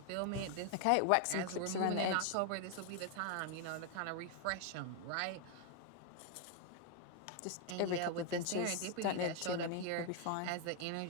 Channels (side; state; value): both; different; correlation 0.00